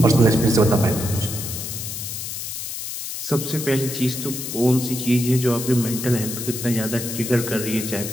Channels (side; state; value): left; noise; hiss, 6 dB below the sound